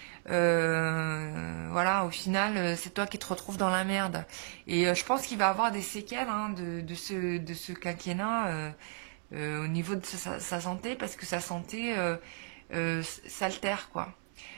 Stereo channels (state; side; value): silent; left; 55 dB below the other